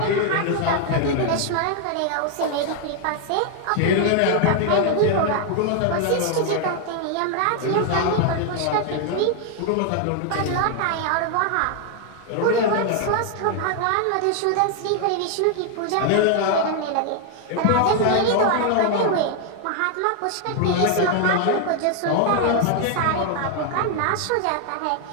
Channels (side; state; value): both; different; correlation 0.00